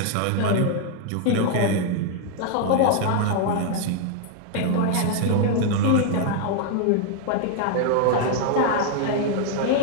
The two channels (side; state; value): both; different; correlation 0.00